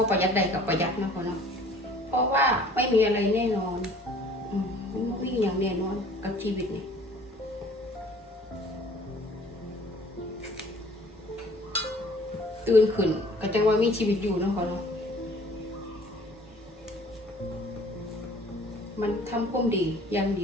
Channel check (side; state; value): both; normal; correlation 0.53